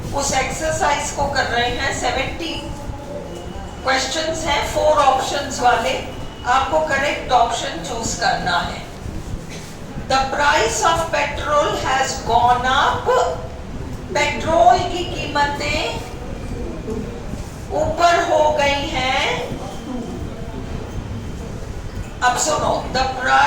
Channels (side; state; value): both; identical; correlation 1.00